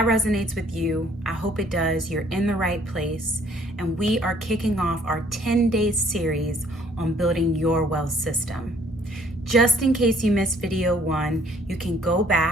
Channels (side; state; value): both; normal; correlation 0.61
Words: resonates with you, I hope it does. You're in the right place. And we are kicking off our 10-day series on building your wealth system. Just in case you missed video 1, you can go